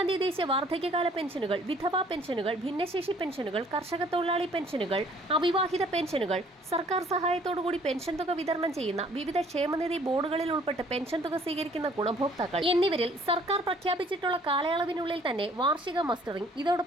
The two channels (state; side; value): normal; both; correlation 0.58